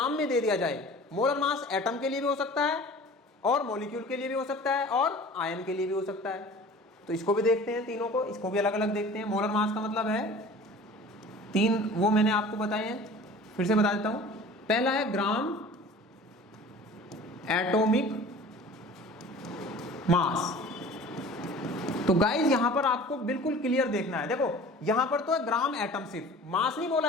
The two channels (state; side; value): normal; both; correlation 0.43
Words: में दे दिया जाए, मोलर मास एटम के लिए भी हो सकता है और मॉलिक्यूल के लिए भी हो सकता है और आयन के लिए भी हो सकता है, तो इसको भी देखते हैं, तीनों को, इसको भी अलग अलग देखते हैं। मोलर मास का मतलब है 3, वो मैंने आपको बताए हैं, फिर से बता देता हूं। पहला है ग्राम एटॉमिक मास। तो गाइस यहां पर आपको बिल्कुल क्लियर देखना है, देखो यहां पर तो है ग्राम एटम, सिर्फ मास नहीं बोला